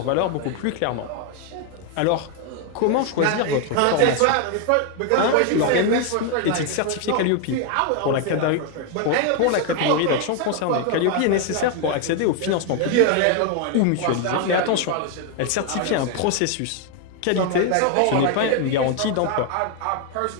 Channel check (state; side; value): different; both; correlation 0.01